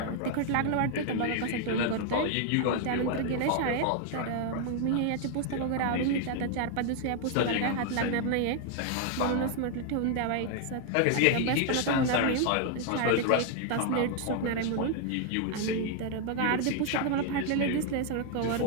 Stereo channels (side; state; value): both; different; correlation 0.00